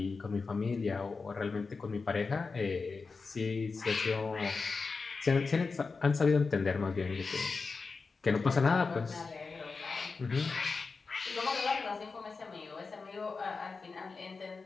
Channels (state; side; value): quieter; right; 4.5 dB